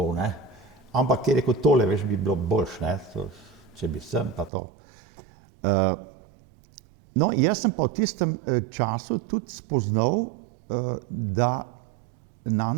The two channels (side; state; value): left; drops out; at 4.5 s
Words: ne. Ampak je rekel, tole, veš, bi bilo boljše, ne, če bi sem pa to. No, jaz sem pa v tistem času tudi spoznal, da